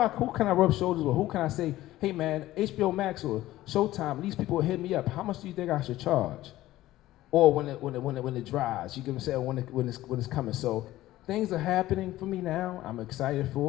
can I rub shoulders with? Who can I say, hey man, HBO Max or Showtime? These people will hit me up. How much do you think I should charge? Or when it dries, you can say when it's coming. So things are happening for me now. I'm excited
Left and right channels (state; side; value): quieter; right; 15.7 dB